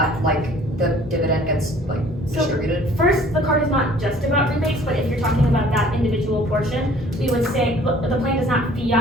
like the dividend gets like distributed? First, the card is not just about rebates, but if you're talking about that individual portion, we would say the plan does not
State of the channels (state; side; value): normal; both; correlation 0.54